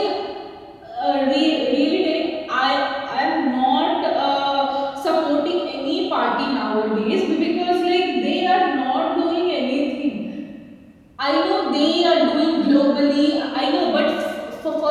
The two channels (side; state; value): both; identical; correlation 1.00